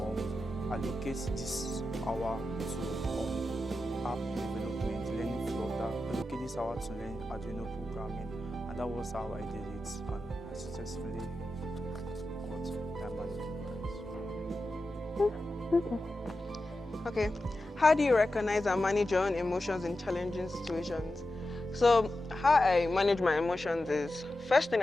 allocate this hour to app development, learning Flutter, allocate this hour to learn Arduino programming, and that was how I did it, and I successfully got time management. Okay, how do you recognize and manage your own emotions in challenging situations? So how I manage my emotions is, first thing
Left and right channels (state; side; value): normal; both; correlation 0.91